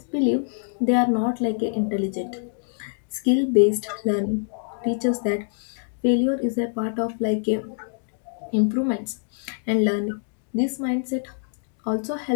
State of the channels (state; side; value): silent; right; digital silence